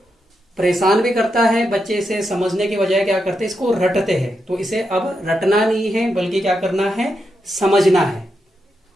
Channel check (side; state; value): both; normal; correlation 0.84